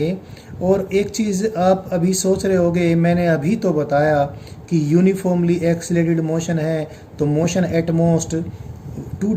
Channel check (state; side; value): identical; both; correlation 1.00